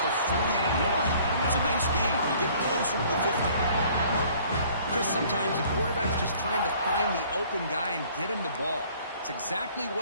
the 41. It's a nice game. You get closer to the 50. Chris, sometimes the quarterback's just trying to find the open guy and get him the ball. It's exactly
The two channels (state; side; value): inverted; both; correlation -0.55